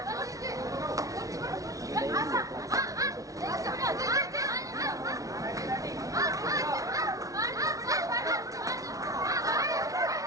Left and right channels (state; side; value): late; left; 0.17 ms